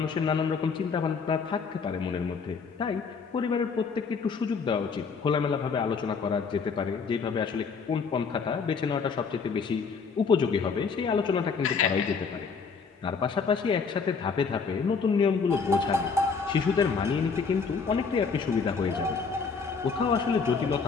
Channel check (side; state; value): right; quieter; 5.3 dB